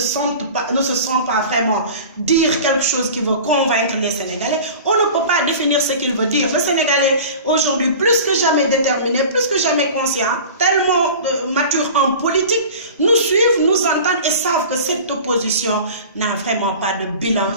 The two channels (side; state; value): both; inverted; correlation -0.38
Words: sent pas vraiment dire quelque chose qui veut convaincre les Sénégalais, on ne peut pas définir ce qu'il veut dire. Le Sénégalais, aujourd'hui, plus que jamais déterminé, plus que jamais conscient, tellement mature en politique, nous suivent, nous entendent et savent que cette opposition n'a vraiment pas de bilan